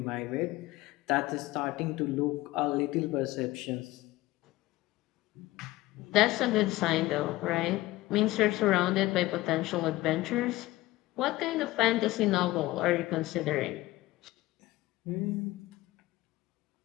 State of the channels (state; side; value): quieter; right; 18.2 dB